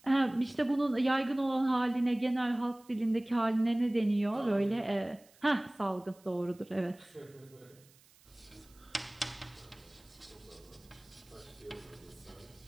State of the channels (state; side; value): noise; right; hiss, 28 dB below the sound